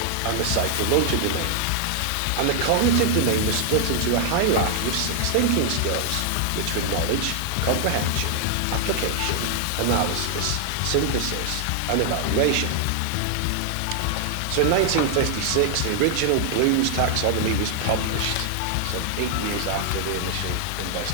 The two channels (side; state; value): both; different; correlation 0.00